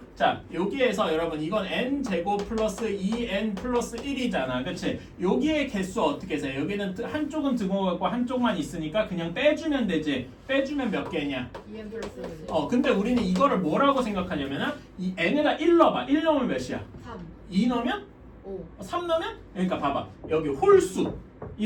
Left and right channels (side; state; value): both; identical; correlation 1.00